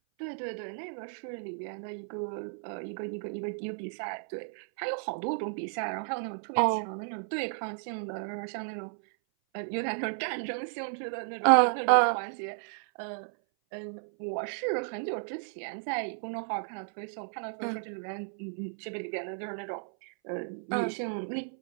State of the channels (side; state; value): left; silent; 56 dB below the other